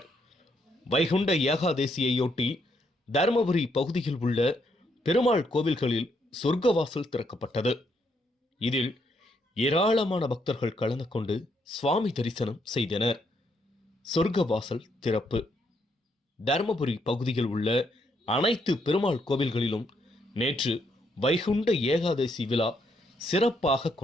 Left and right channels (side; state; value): both; normal; correlation 0.75